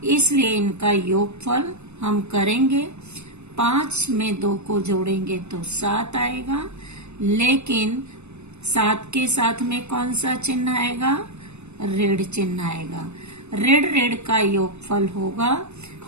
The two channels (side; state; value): left; late; 0.81 ms